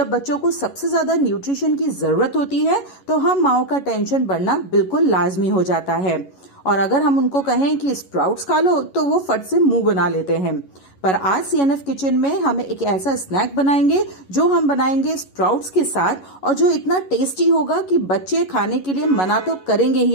बच्चों को सबसे ज्यादा न्यूट्रिशन की जरूरत होती है, तो हम माओ का टेंशन बढ़ना बिल्कुल लाजमी हो जाता है। और अगर हम उनको कहें कि स्प्राउट्स खा लो, तो वो फट से मुंह बना लेते हैं। पर आज सीएनएफ किचन में हम एक ऐसा स्नैक बनाएंगे जो हम बनाएंगे स्प्राउट्स के साथ, और जो इतना टेस्टी होगा कि बच्चे खाने के लिए मना तो करेंगे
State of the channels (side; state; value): right; late; 11 ms